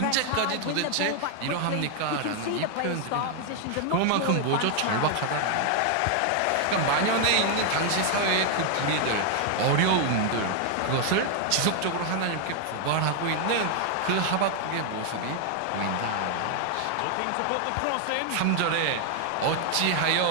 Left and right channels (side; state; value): both; different; correlation 0.00